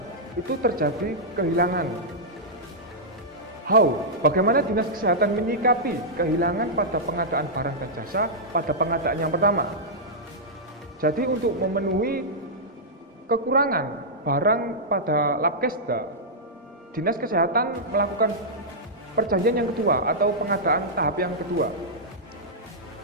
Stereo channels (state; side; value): normal; both; correlation -0.10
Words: itu terjadi kehilangan. How? Bagaimana Dinas Kesehatan menyikapi kehilangan pada pengadaan barang dan jasa pada pengadaan yang pertama? Jadi untuk memenuhi kekurangan barang pada Labkesda, Dinas Kesehatan melakukan perjanjian yang kedua atau pengadaan tahap yang kedua.